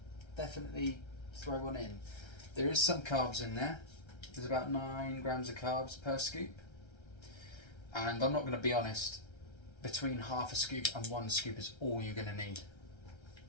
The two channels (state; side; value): late; right; 1.3 ms